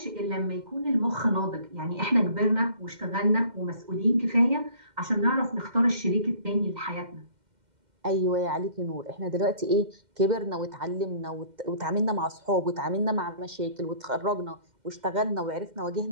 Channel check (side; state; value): left; late; 2.1 ms